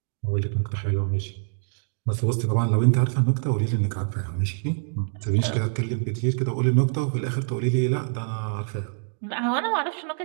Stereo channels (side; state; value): left; silent; digital silence